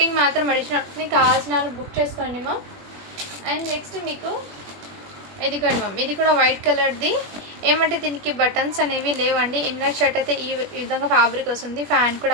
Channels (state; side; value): late; left; 21 ms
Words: మాత్రం అడిషనల్ ఉంటుంది. కావాల్సిన వాళ్ళు బుక్ చేసుకోండి మ్యామ్. అండ్ నెక్స్ట్ మీకు ఇది కూడా మ్యామ్, ఇది కూడా వైట్ కలర్ది. ఏమంటే దీనికి బటన్స్ అనేవి లేవండి. ఇన్నర్ షర్ట్ అయితే ఈ విధంగా ఫ్యాబ్రిక్ వస్తుంది. ఫ్యాన్